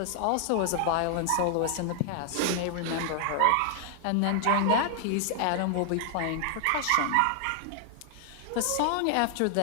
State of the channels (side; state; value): both; different; correlation 0.00